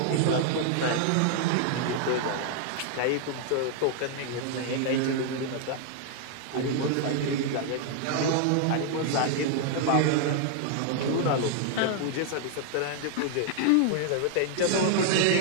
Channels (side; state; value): both; different; correlation 0.00